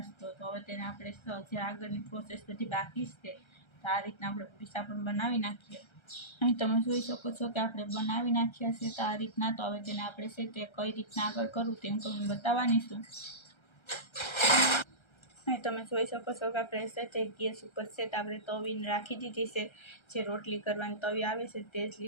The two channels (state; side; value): late; right; 1.3 ms